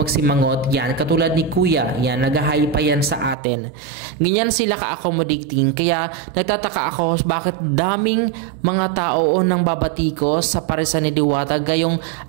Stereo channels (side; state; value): left; drops out; at 3.4 s